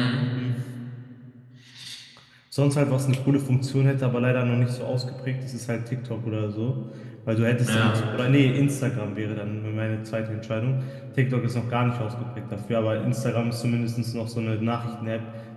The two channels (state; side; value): identical; both; correlation 1.00